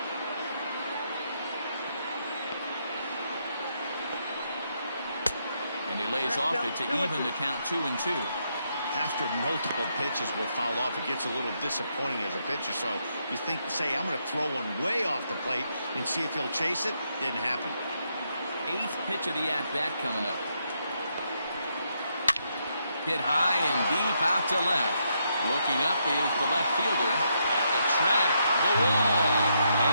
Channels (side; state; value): both; inverted; correlation -0.78